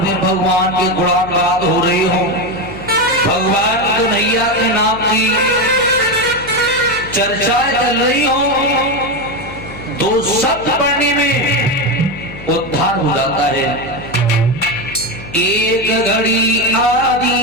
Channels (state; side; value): noise; left; hum, 15 dB below the sound